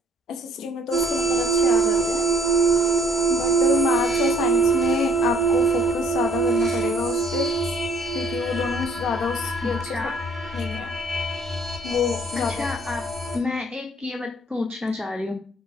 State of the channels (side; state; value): both; normal; correlation 0.59